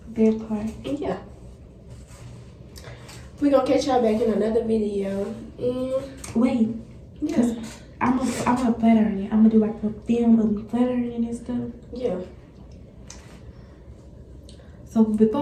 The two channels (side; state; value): both; identical; correlation 1.00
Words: That part. And yeah. We're gonna catch y'all back in another video. And Wait, yeah. I'm gonna blatter in it. I'm gonna do like a film of me blattering and stuff. Yeah. So